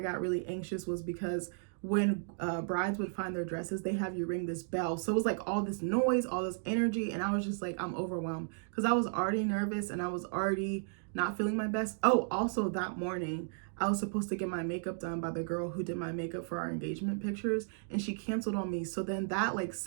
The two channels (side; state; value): left; silent; digital silence